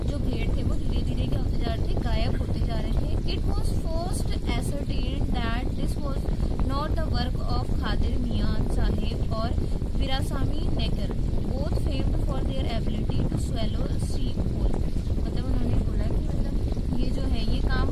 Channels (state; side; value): identical; both; correlation 1.00